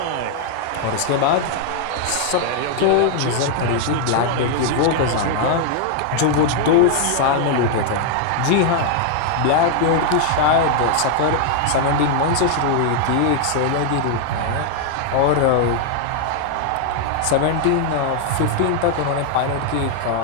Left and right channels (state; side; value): different; both; correlation 0.00